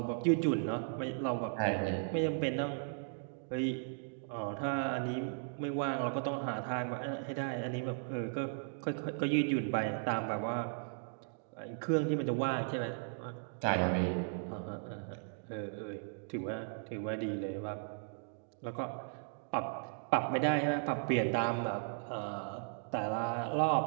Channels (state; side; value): silent; left; digital silence